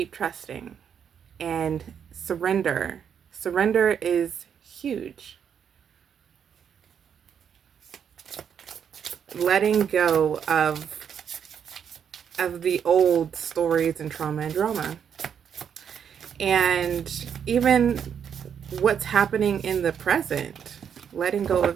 trusting, and surrender. Surrender is huge. Letting go of the old stories and trauma and drama. And even what's happening in the present, letting go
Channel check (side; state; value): left; quieter; 7.9 dB